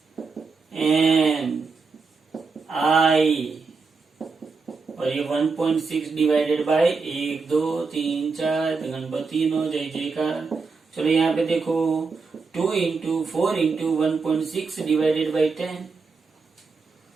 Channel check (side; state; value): left; quieter; 4.6 dB